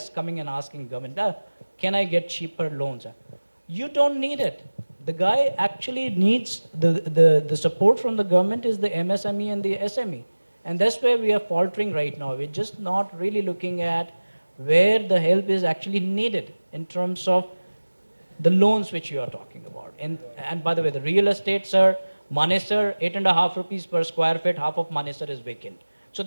coming and asking government, can I get cheaper loans? You don't need it. The guy actually needs the support from the government is the MSME and the SME. And that's where we are faltering right now. We're just not really looking at where the help is actually needed in terms of the loans which you are talking about. And by the way, the real estate, sir, Manesar, 8.5 rupees per square feet, half of Manesar is vacant. So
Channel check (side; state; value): both; inverted; correlation -1.00